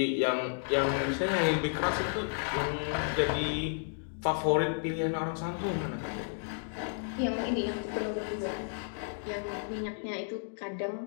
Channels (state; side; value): silent; right; digital silence